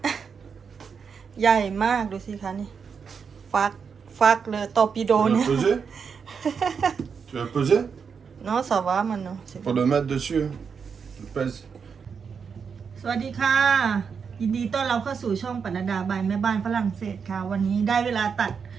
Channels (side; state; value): left; quieter; 6.2 dB